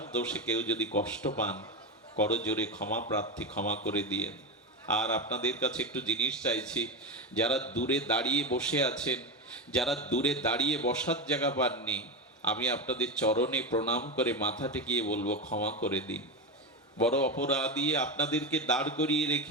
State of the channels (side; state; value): both; normal; correlation 0.16